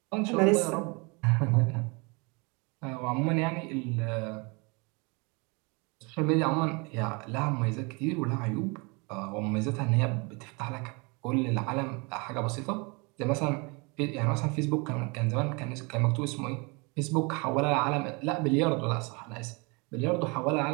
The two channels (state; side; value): quieter; left; 29.6 dB